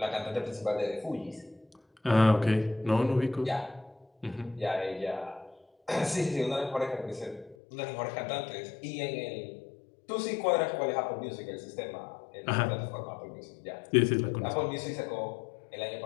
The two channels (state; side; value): drops out; right; at 7.6 s